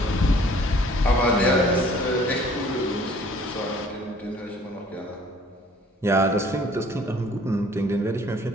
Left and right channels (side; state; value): both; normal; correlation 0.55